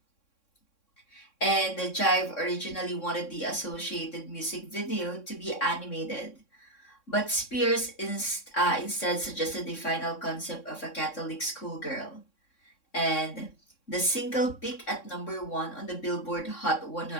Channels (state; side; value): late; right; 3.6 ms